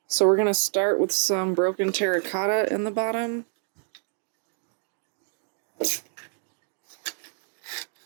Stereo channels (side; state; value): left; silent; digital silence